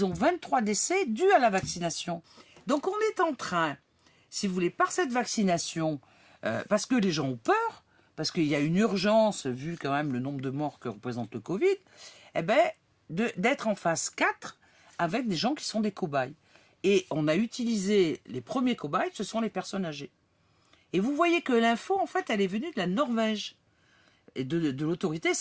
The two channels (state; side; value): identical; both; correlation 1.00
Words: ont 23 décès dus à la vaccination. Donc on est en train, si vous voulez, par cette vaccination, parce que les gens ont peur, parce qu'il y a une urgence, vu quand même le nombre de morts que représente le Covid, eh bien, d'être en phase 4 avec des gens qui sont des cobayes. Et on a utilisé les premiers cobayes, ce sont les personnes âgées. Et vous voyez que l'info, en fait, elle est venue de la Norvège et de l'autorité